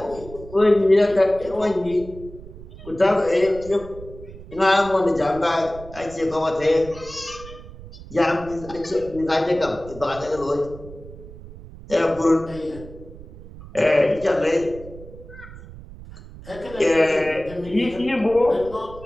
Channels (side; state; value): right; noise; rumble, 16 dB below the sound